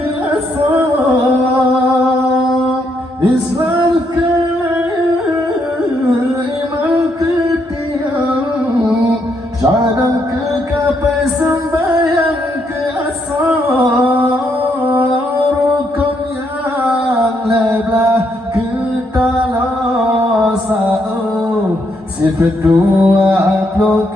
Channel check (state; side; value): normal; both; correlation 0.76